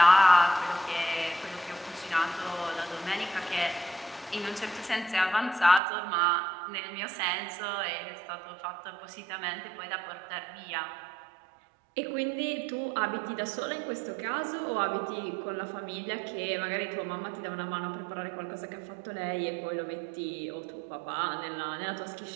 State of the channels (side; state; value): left; drops out; at 5.8 s